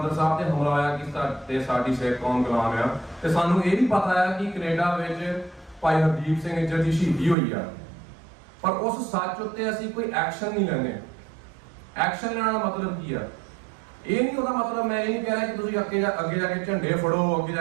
ਸਾਹਿਬ ਤੇ ਹਮਲਾ ਹੋਇਆ ਕਿ ਸਾਡੀ ਸਿੱਖ ਕੌਮ ਗੁਲਾਮ ਆ, ਤੇ ਸਾਨੂੰ ਇਹ ਵੀ ਪਤਾ ਆ ਕਿ ਕੈਨੇਡਾ ਵਿੱਚ ਭਾਈ ਹਰਦੀਪ ਸਿੰਘ ਇੱਜਰ ਦੀ ਸ਼ਹੀਦੀ ਹੋਈ ਆ। ਪਰ ਉਸ ਸੱਚ ਉੱਤੇ ਅਸੀਂ ਕੋਈ ਐਕਸ਼ਨ ਨਹੀਂ ਲੈਂਦੇ। ਐਕਸ਼ਨ ਲੈਣ ਦਾ ਮਤਲਬ ਕੀ ਆ? ਇਹ ਨਹੀਂ ਉਹਦਾ ਮਤਲਬ, ਮੈਂ ਇਹ ਨਹੀਂ ਕਹਿ ਰਿਹਾ ਕਿ ਤੁਸੀਂ ਅੱਗੇ ਜਾ ਕੇ ਝੰਡੇ ਫੜੋ, ਅੱਗੇ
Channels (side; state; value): left; drops out; at 7.4 s